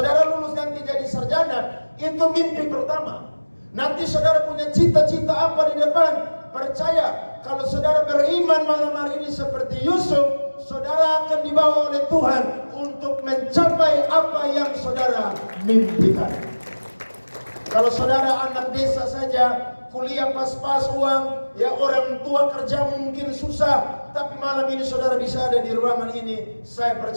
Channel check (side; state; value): both; inverted; correlation -1.00